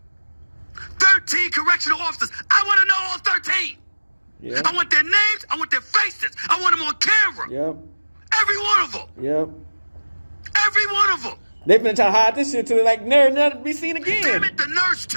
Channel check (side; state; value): both; inverted; correlation -1.00